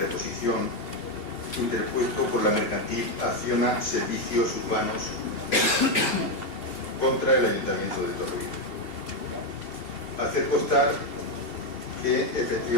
interpuesto por la mercantil Acciona Servicios Urbanos contra el Ayuntamiento de Torrevieja. Hacer constar que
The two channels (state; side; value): late; right; 2.8 ms